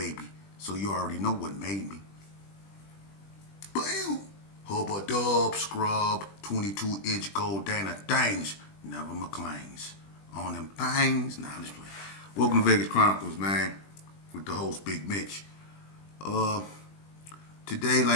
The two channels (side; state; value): right; late; 20 ms